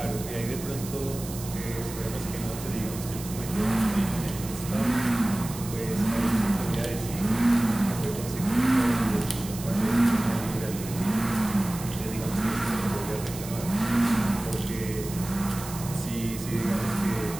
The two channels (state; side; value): noise; right; hiss, 12 dB below the sound